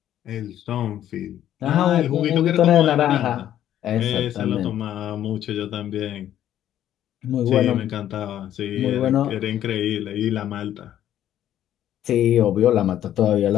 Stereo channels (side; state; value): right; quieter; 11.5 dB